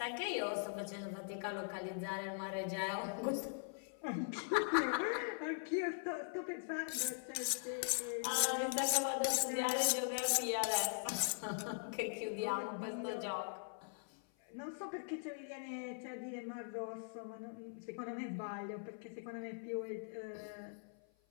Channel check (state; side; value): silent; right; 50 dB below the other